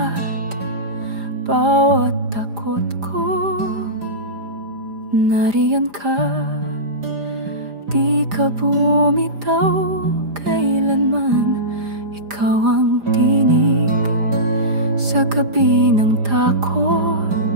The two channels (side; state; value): left; late; 4.9 ms